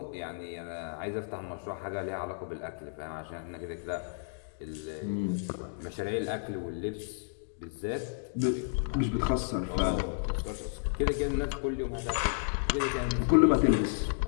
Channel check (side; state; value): right; silent; digital silence